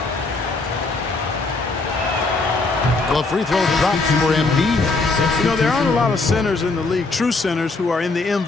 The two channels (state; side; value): quieter; right; 3.6 dB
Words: The free throw drops for Embiid. You know, there aren't a lot of centers in the league, true centers, who are in the